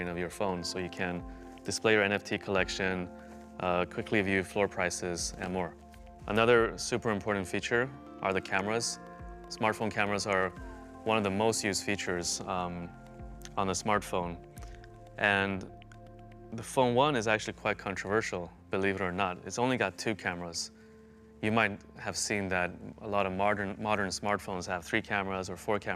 of your phone, so you can display your NFT collection, quickly view floor prices, and more. Another super important feature are the cameras. Smartphone cameras are one of the most used features on the smartphone. And the Phone 1 is actually quite controversial, believe it or not. It's only got 2 cameras. You might have seen that a lot of modern smartphones have 3 cameras or 4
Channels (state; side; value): identical; both; correlation 1.00